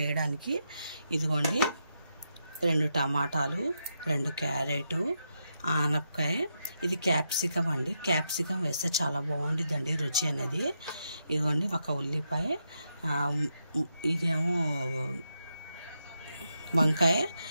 వేయడానికి ఇదిగోండి 2 టమాటాలు, 2 క్యారెట్, ఆనపకాయ, ఇది క్యాప్సికం అండి. క్యాప్సికం వేస్తే చాలా బాగుంటుందండి రుచి అనేది. ఇదిగోండి ఒక ఉల్లిపాయ, ఇదేమో వంకాయ,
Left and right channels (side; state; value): both; inverted; correlation -0.83